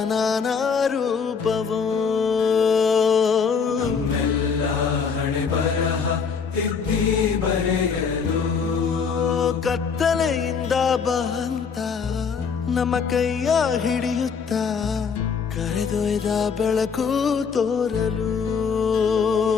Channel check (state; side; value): quieter; right; 6.0 dB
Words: ನಾನಾ ರೂಪವೋ ನಮ್ಮೆಲ್ಲ ಹಣೆ ಬರಹ ತಿದ್ದಿ ಬರೆಯಲು ಕತ್ತಲೆಯಿಂದ ಬಂತ ನಮ್ಮ ಕೈಯ ಹಿಡಿಯುತ್ತ ಕರೆದೊಯ್ದ ಬೆಳಕು ತೋರಲು